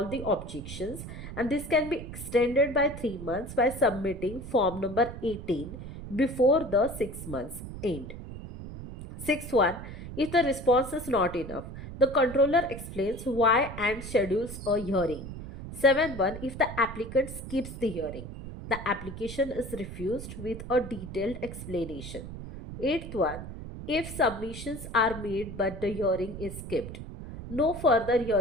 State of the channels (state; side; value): noise; right; rumble, 10 dB below the sound